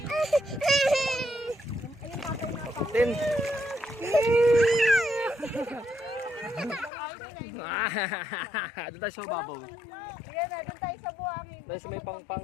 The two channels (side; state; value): right; drops out; at 6.9 s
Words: Tin. Doon tayo sa mababaw. Yan na, doon tayo sa buhangin. Tayo sa may pangpang.